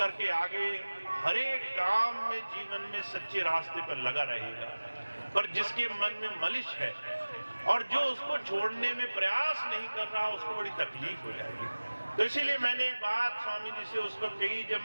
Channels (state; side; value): inverted; both; correlation -1.00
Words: आगे हर एक काम में, जीवन में सच्चे रास्ते पर लगा रहेगा। पर जिसके मन में मलिश है और जो उसको छोड़ने में प्रयास नहीं कर रहा, उसको बड़ी तकलीफ हो जाएगी। तो इसीलिए मैंने एक बात स्वामी जी से उस वक्त कही